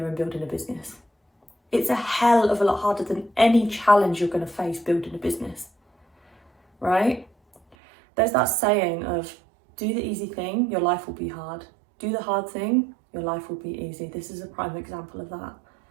and building a business. It's a hell of a lot harder than any challenge you're going to face building a business, right? There's that saying of, do the easy thing, your life will be hard. Do the hard thing, your life will be easy. This is a prime example of that.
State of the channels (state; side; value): drops out; left; at 7.8 s